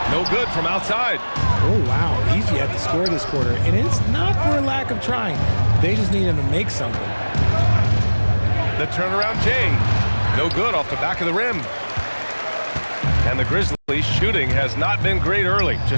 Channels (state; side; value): inverted; both; correlation -1.00